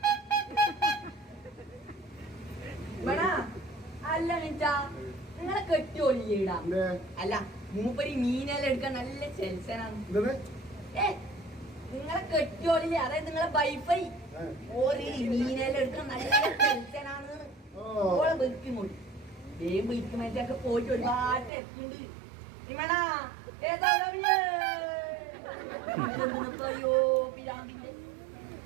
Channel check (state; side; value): drops out; left; at 21.5 s